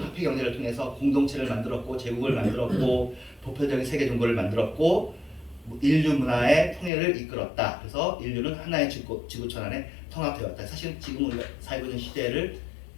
화폐 경제를 통해서 공동체를 만들었고 제국을 만들었고 보편적인 세계 종교를 만들었고 인류 문화의 통일을 이끌었다. 그래서 인류는 하나의 지구촌 안에 통합되었다. 사실 지금 우리가 살고 있는 시대를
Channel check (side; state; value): right; drops out; at 6.9 s